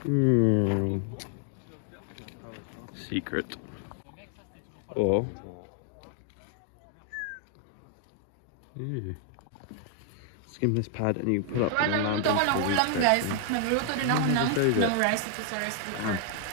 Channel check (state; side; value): different; both; correlation 0.00